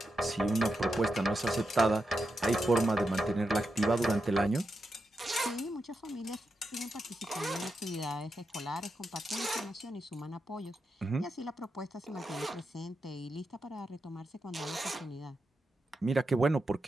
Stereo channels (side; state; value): both; normal; correlation 0.87